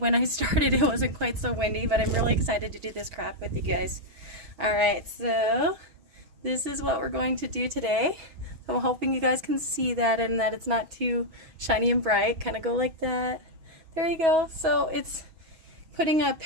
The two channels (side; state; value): left; late; 6.2 ms